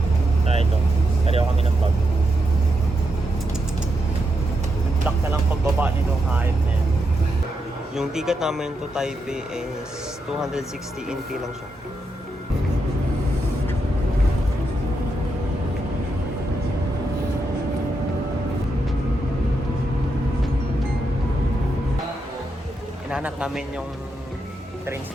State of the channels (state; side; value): normal; both; correlation 0.84